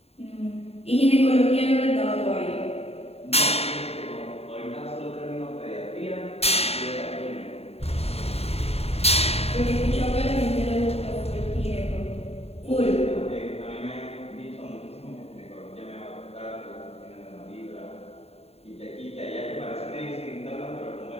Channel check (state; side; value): late; right; 0.29 ms